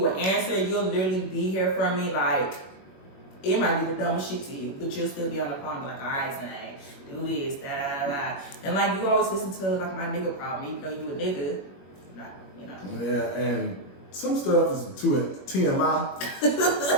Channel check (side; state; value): right; late; 21 ms